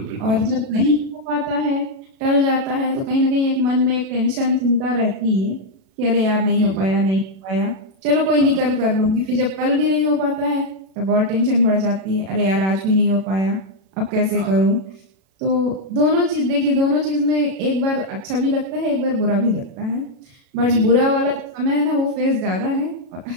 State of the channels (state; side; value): late; left; 37 ms